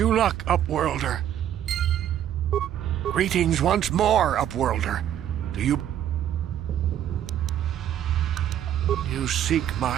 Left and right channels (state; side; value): quieter; left; 10.7 dB